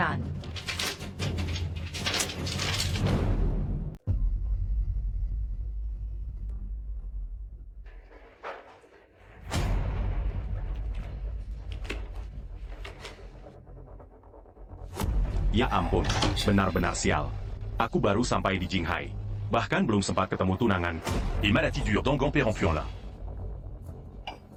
Ya ampun, benar-benar sial. Aku baru sampai di Jinghai. Bahkan belum sempat ketemu tunangan. Et maladie dure d'Angan Pérempuan là.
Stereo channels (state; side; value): identical; both; correlation 1.00